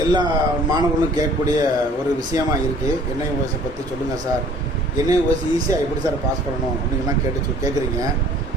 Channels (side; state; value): both; normal; correlation 0.53